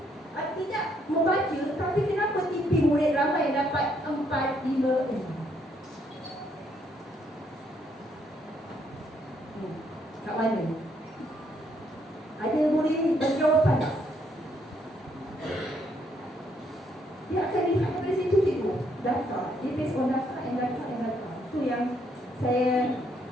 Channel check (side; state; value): both; normal; correlation 0.72